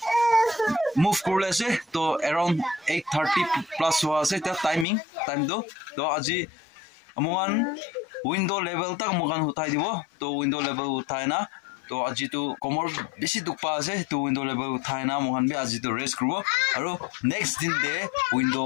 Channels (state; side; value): drops out; right; at 4.9 s